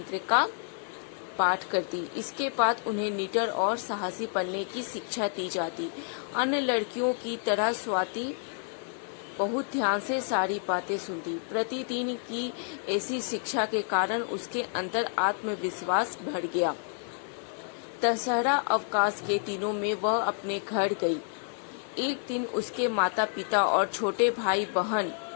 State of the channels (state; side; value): silent; right; 58 dB below the other